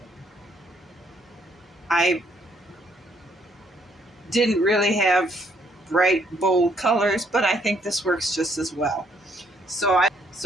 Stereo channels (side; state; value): both; normal; correlation 0.69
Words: bright, bold colors, but I think this works just as well. So I